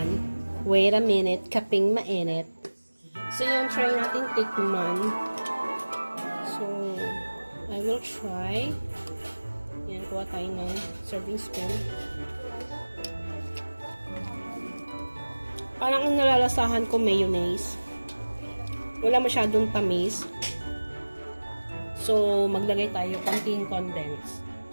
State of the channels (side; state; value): both; inverted; correlation -1.00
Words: Wait a minute, kaping mainit. So, yun, try natin tikman. So, I will try. Yan, kuha tayo ng serving spoon. Parang ang nalalasahan ko mayonnaise. Wala masyadong tamis. So, maglagay tayo konting condense.